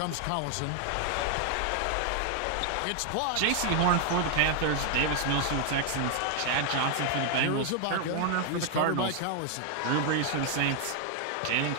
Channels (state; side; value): different; both; correlation 0.00